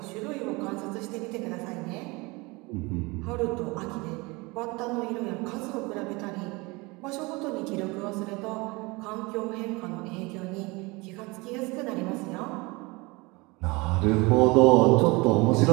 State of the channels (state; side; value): quieter; left; 25.0 dB